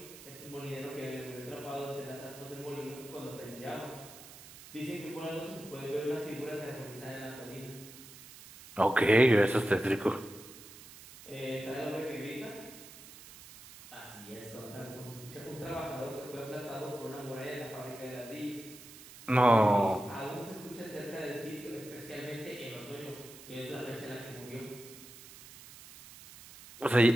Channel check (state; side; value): noise; right; hiss, 17 dB below the sound